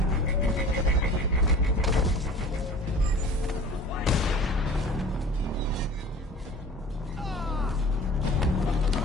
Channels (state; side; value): normal; both; correlation 0.42